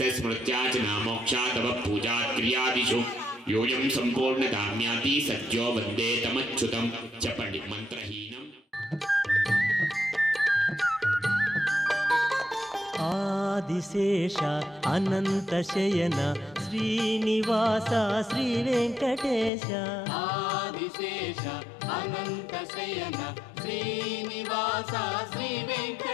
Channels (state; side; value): drops out; right; at 19.5 s